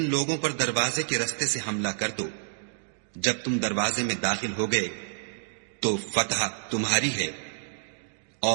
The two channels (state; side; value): silent; left; digital silence